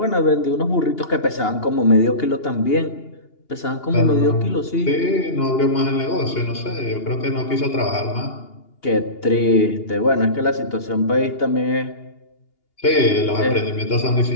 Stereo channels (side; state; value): right; late; 2.8 ms